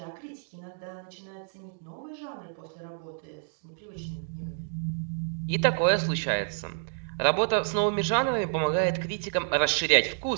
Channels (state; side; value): silent; left; digital silence